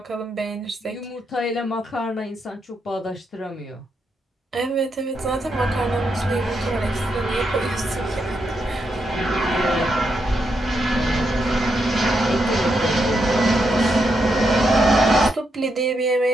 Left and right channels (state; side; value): normal; both; correlation 0.82